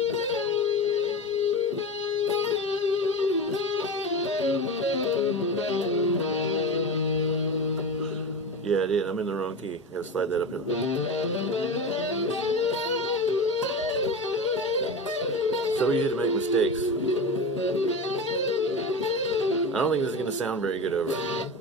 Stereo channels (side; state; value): both; normal; correlation 0.25